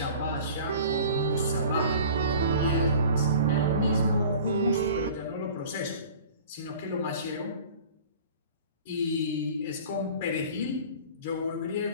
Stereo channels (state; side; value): inverted; both; correlation -0.43